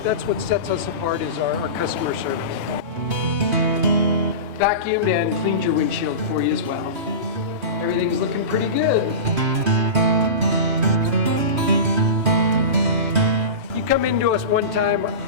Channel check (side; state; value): left; late; 3.2 ms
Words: what sets us apart is our customer service. Vacuumed and cleaned your windshield for you as well. Everything's looking pretty good. You come into us one time,